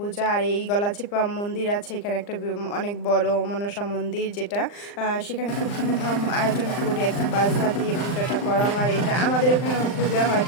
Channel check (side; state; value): right; late; 39 ms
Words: আর এই গলাচিপা মন্দির আছে এখানে একটা অনেক বড় মনসা মন্দির যেটা সেখানে খুব ধুমধাম আয়োজন করে একদম বাজনা দিয়ে পূজাটা করা হয়। এটা আমাদের ওখানে পূজা হয়